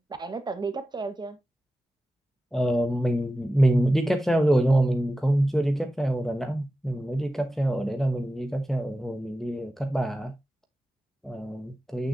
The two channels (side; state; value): both; normal; correlation 0.93